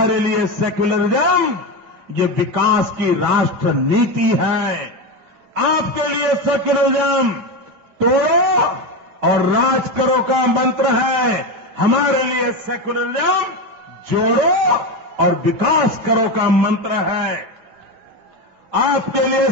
लिए सेक्युलरिज्म ये विकास की राष्ट्र नीति है। आपके लिए सेक्युलरिज्म तोड़ो और राज करो का मंत्र है। हमारे लिए सेक्युलरिज्म जोड़ो और विकास करो का मंत्र है। आपके लिए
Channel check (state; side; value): late; left; 9.1 ms